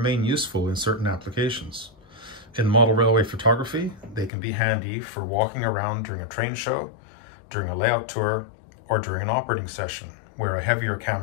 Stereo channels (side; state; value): right; drops out; at 4.3 s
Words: useful in certain applications. In model railway photography, they can be handy for walking around during a train show, during a layout tour, or during an operating session, where a heavier